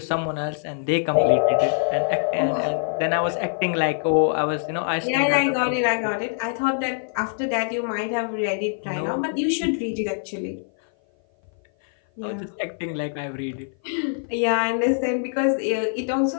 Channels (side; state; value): right; silent; 56 dB below the other